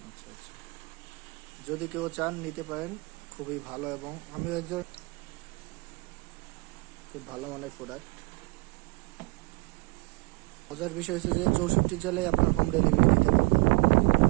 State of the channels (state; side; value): quieter; left; 26.9 dB